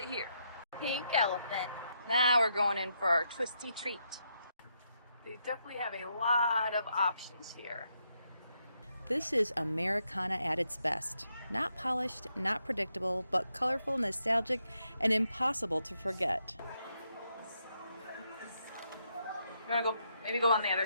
here. Pink elephant. Now we're going in for our twisty treat. They definitely have a lot of options here. This is Americana at its best. Not polished, not predictable, but colorful, nostalgic, and impossible to forget. You wanna go, maybe go on the other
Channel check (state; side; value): inverted; both; correlation -0.79